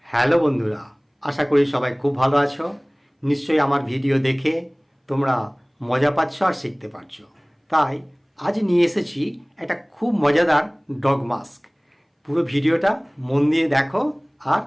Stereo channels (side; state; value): both; identical; correlation 1.00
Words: Hello বন্ধুরা, আশা করি সবাই খুব ভালো আছো। নিশ্চয়ই আমার ভিডিও দেখে তোমরা মজা পাচ্ছ আর শিখতে পারছো। তাই আজ নিয়ে এসেছি একটা খুব মজাদার ডগ মাস্ক। পুরো ভিডিওটা মন দিয়ে দেখো আর